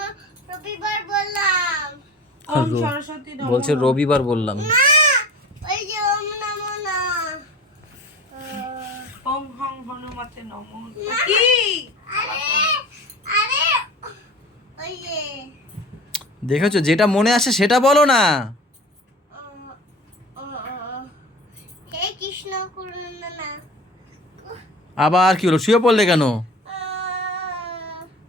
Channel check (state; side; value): normal; both; correlation 0.38